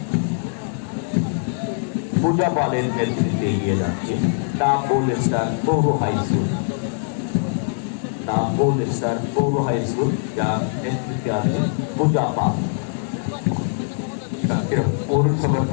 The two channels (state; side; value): silent; right; 61 dB below the other